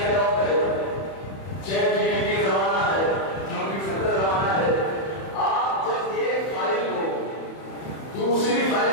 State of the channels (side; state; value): right; late; 31 ms